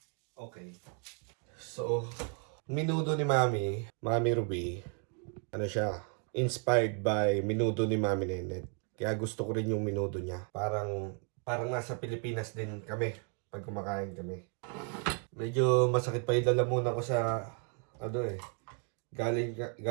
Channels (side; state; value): left; quieter; 39.3 dB